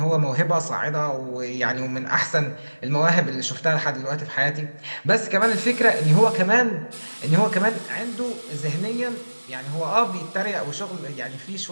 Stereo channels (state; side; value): inverted; both; correlation -1.00